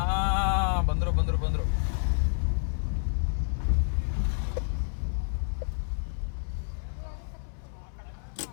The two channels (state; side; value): silent; right; 59 dB below the other